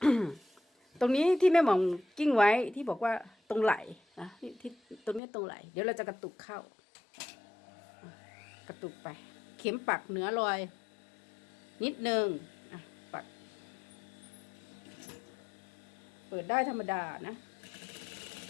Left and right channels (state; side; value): drops out; right; at 5.2 s